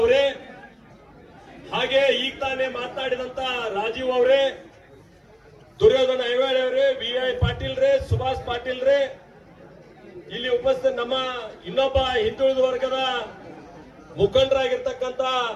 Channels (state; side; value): identical; both; correlation 1.00